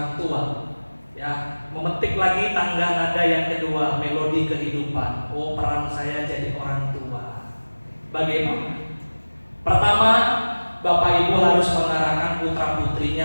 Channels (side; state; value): both; inverted; correlation -1.00